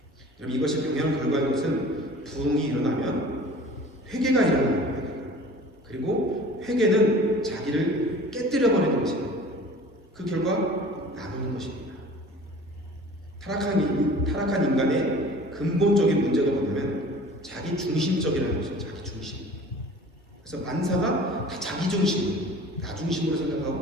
여러분 이것이 당연한 결과인 것은 부흥이 일어나면 회개가 일어납니다. 그리고 회개는 자기를 깨뜨려버리는 것입니다. 그 결과 나누는 것입니다. 타락한 인간의 근본적인 문제가 뭐냐면 자기 중심적이라는 것이죠. 자기 중심. 그래서 만사가 다 자기 중심, 나 중심으로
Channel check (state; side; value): normal; both; correlation 0.44